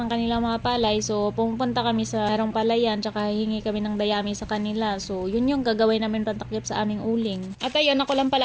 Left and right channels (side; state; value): both; identical; correlation 1.00